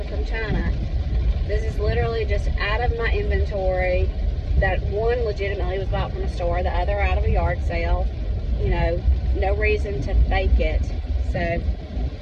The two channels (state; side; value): identical; both; correlation 1.00